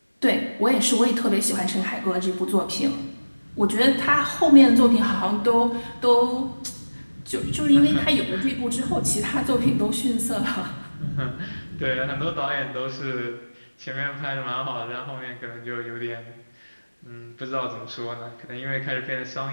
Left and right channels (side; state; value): both; inverted; correlation -1.00